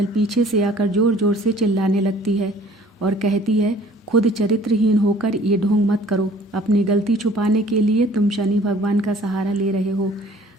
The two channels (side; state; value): both; normal; correlation 0.53